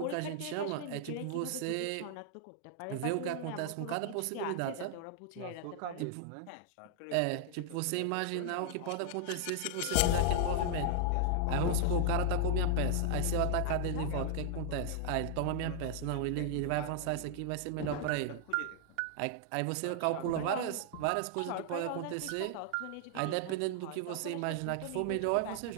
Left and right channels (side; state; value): both; different; correlation 0.00